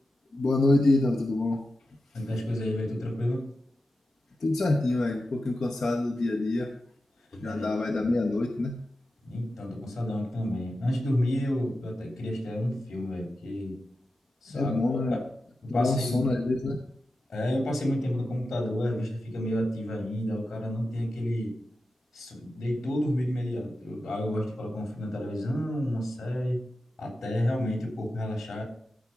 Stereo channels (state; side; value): normal; both; correlation 0.91